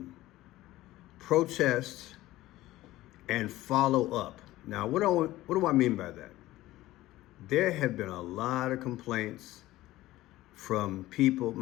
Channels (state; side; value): quieter; right; 16.5 dB